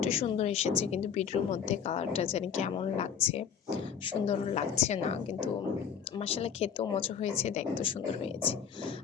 সুন্দর এসেছে, কিন্তু ভিডিওর মধ্যে কালারটা জানি কেমন লাগছে, সুন্দর লাগছে না, কিন্তু মাশাআল্লাহ খেতেও মজা হয়েছে, দেখতেও সুন্দর হয়েছে।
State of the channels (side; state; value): right; quieter; 7.5 dB